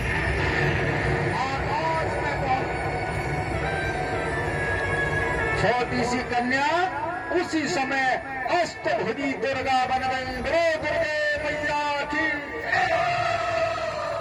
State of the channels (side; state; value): both; identical; correlation 1.00